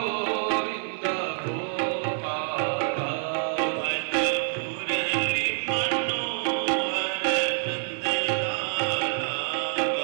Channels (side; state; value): left; silent; 60 dB below the other